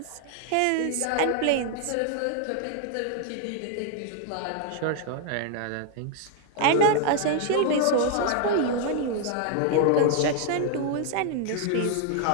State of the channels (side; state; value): both; different; correlation 0.00